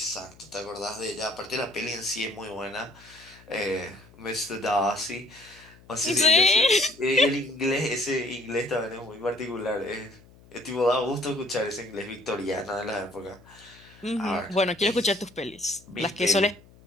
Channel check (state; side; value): noise; left; hum, 25 dB below the sound